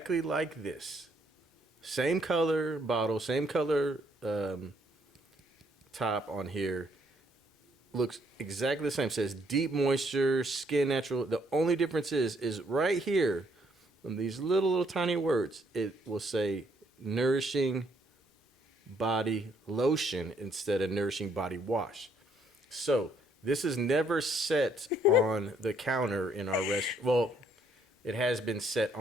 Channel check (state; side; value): normal; both; correlation 0.69